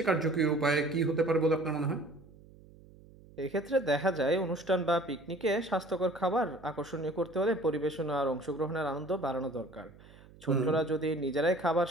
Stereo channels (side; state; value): right; noise; hum, 23 dB below the sound